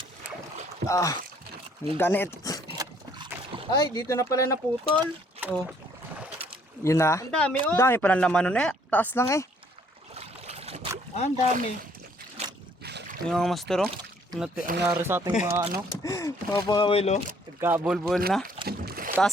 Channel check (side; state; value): both; normal; correlation 0.63